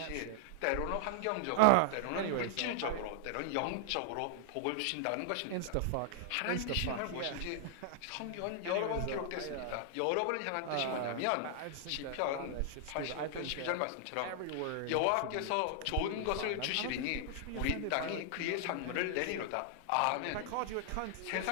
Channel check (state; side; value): different; both; correlation 0.00